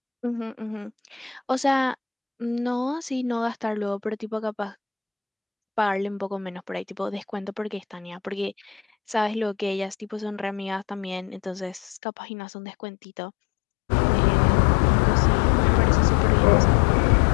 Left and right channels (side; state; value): right; drops out; at 12.0 s